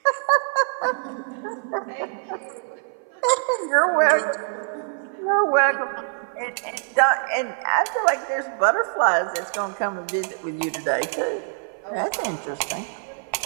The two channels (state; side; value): silent; left; 56 dB below the other